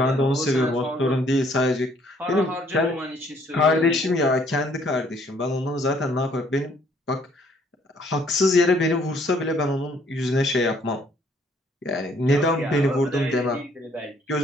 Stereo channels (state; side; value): normal; both; correlation 0.63